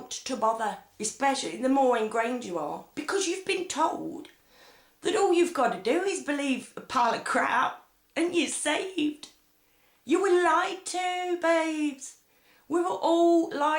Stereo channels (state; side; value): identical; both; correlation 1.00